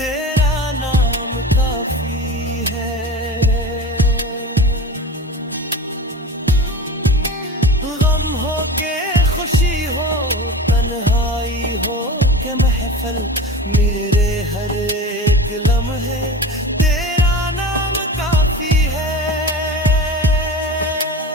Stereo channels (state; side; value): normal; both; correlation 0.32